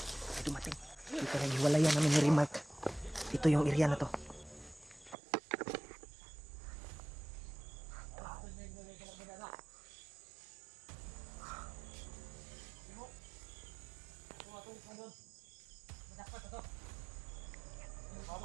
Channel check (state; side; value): drops out; left; at 5.2 s